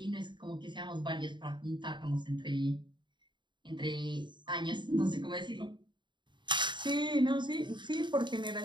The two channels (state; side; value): late; left; 0.23 ms